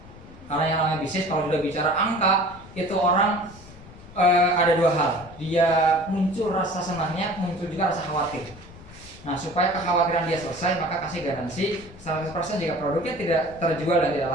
Karena yang namanya bisnis, kalau sudah bicara angka, itu orang ada 2 hal. Dia muncul rasa senangnya, muncul juga rasa khawatir. Nah, supaya kekhawatiran dia selesai, maka kasih garansi 100% jika produknya tidak terjual dan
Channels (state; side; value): noise; left; rumble, 19 dB below the sound